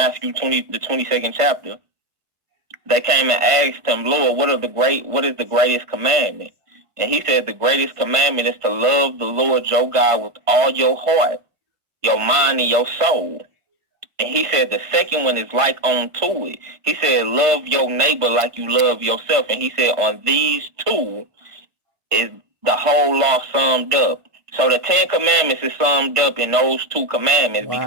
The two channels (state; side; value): late; left; 1.5 ms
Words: 20, the 22nd chapter, they came and asked him, Lord, what is the greatest commandment? And he said the greatest commandment is to love the Lord your God with all your heart, your mind, and your soul. And he said the second one is like unto it. He said, love your neighbor like you love yourself. And he said, on these two is the whole law summed up. So the 10 commandments is summed up in those 2 commandments. Wow.